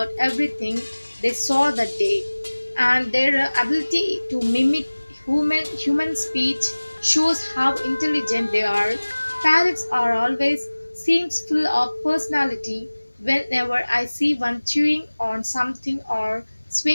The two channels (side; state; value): both; inverted; correlation -1.00